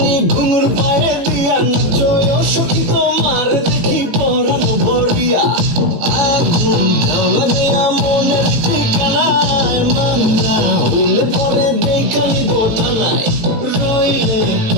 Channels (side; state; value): left; late; 18 ms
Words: ঘুঙুর পায়ে দিয়া নাচয় সখী তোমার দেখি পরানো ভরিয়া আগুন দেও লাগাইয়া মনের ঠিকানায় মামলা হইলে পরে দেখানি বোটা নাই রইলে